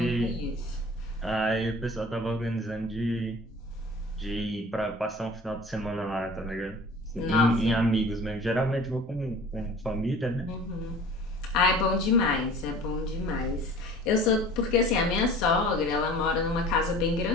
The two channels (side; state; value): both; normal; correlation 0.44